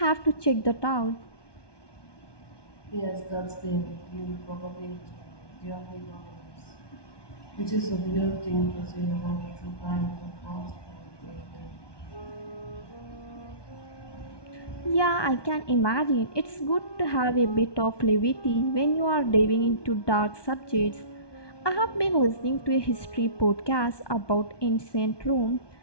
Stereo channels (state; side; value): late; right; 1.2 ms